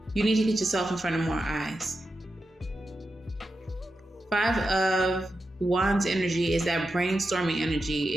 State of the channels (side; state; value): both; normal; correlation 0.89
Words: You need to get yourself in front of more eyes. 5 of Wands energy is that brainstorming